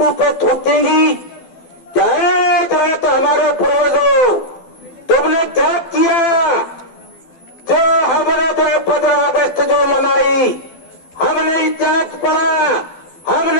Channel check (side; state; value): right; late; 12 ms